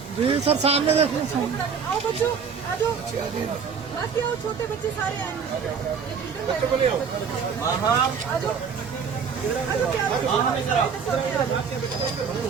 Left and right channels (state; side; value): quieter; left; 6.3 dB